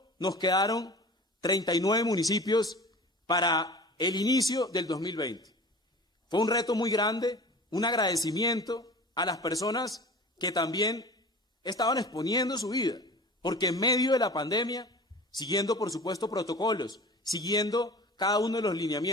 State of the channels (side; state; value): both; normal; correlation 0.39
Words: nos quedaron 39 municipios para el inicio del 2020. Fue un reto muy grande, un agradecimiento a las personas que también estaban exponiendo su vida, porque en medio de la pandemia, siguiendo por supuesto protocolos, siguiendo cada uno de los